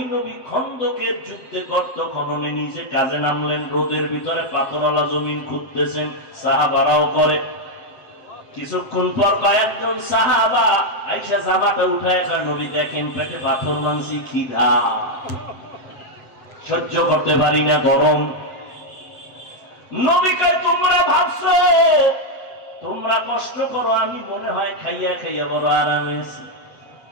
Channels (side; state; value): right; late; 7.7 ms